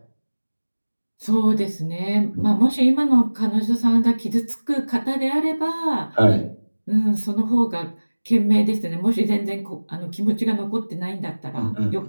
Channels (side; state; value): both; inverted; correlation -1.00